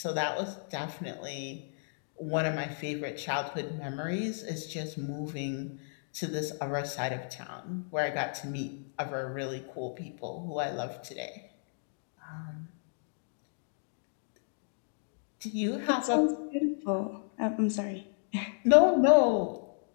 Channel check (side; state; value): right; silent; digital silence